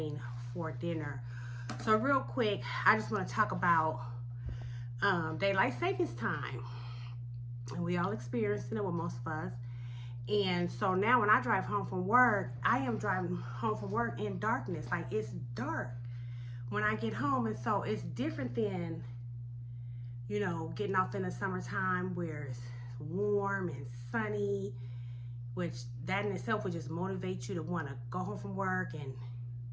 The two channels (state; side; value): identical; both; correlation 1.00